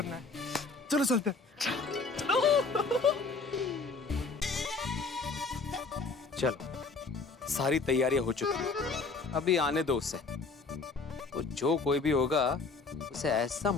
है। चलो चलते हैं। चलो, सारी तैयारियां हो चुकी हैं। अभी आने दो उसे। तो जो कोई भी होगा उसे ऐसा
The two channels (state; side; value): quieter; right; 4.2 dB